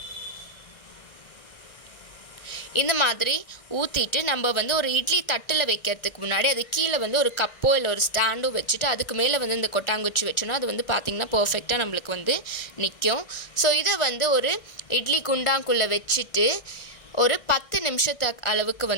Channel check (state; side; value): late; right; 1.6 ms